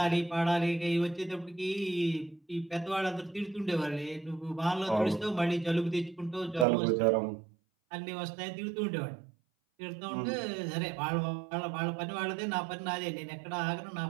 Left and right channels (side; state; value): left; drops out; at 6.7 s